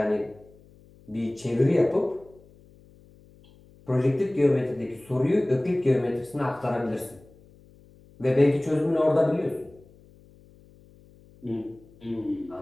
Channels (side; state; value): left; noise; hum, 26 dB below the sound